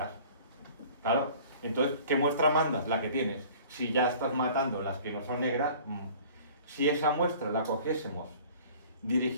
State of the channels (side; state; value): both; inverted; correlation -0.48